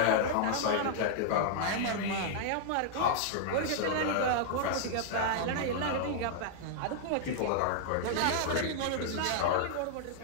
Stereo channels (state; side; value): different; both; correlation -0.01